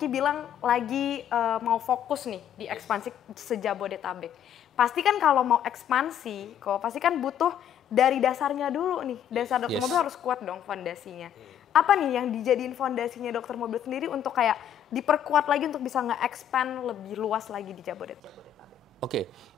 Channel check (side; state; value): right; quieter; 9.5 dB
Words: bilang lagi mau fokus nih di ekspansi se-Jabodetabek. Pasti kan kalau mau ekspansi, pasti kan butuh dari dasarnya dulu nih. Dasar dokter mobil harus kuat dong fondasinya. Apa nih yang dijadiin fondasinya dokter mobil sendiri untuk kayak diperkuat lagi untuk bisa nge-expand lebih luas lagi di Jabodetabek? Oke,